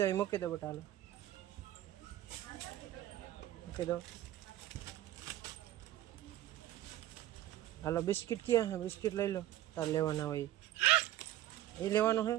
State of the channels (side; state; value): left; quieter; 13.8 dB